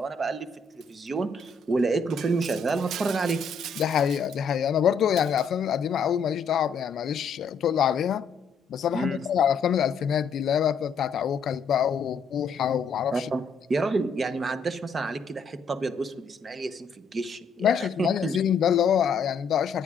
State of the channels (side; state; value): right; quieter; 4.5 dB